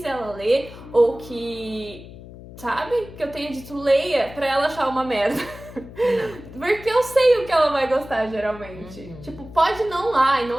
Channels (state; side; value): noise; left; hum, 16 dB below the sound